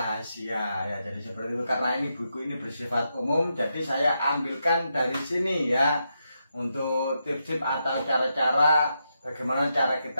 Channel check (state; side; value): inverted; both; correlation -0.83